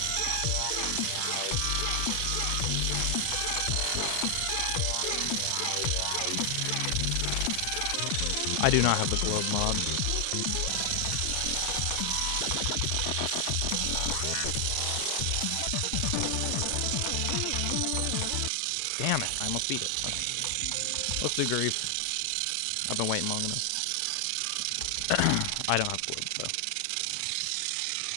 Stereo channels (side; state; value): both; different; correlation 0.00